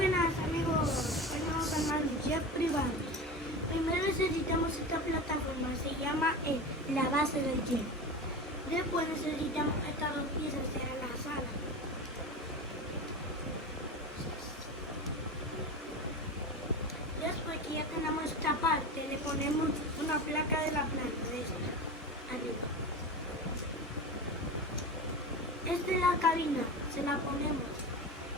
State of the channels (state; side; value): normal; both; correlation 0.27